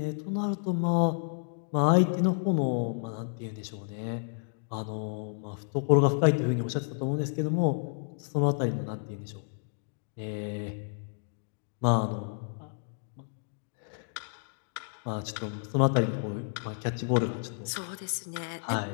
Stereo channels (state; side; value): silent; right; digital silence